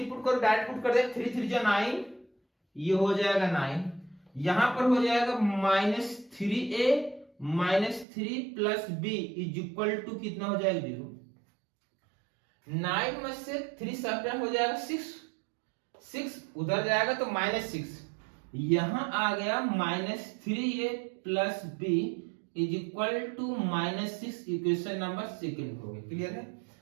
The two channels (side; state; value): left; drops out; at 8.1 s